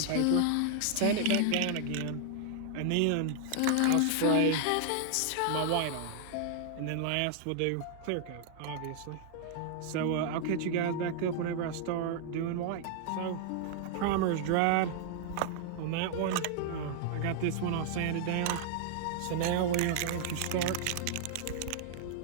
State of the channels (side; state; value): both; different; correlation 0.00